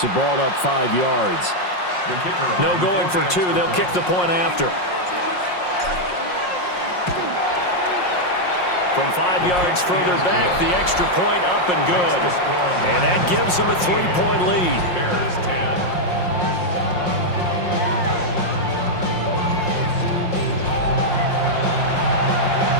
the ball up 5 yards. No going for 2. They'll kick the point after. From 5 yards further back, the extra point up and good. And that gives them a 3-point lead. Bears 10.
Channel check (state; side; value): late; right; 5.6 ms